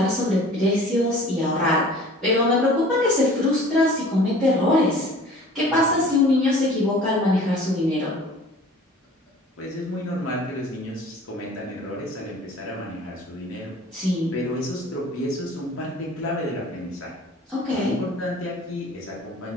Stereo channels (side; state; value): both; normal; correlation 0.46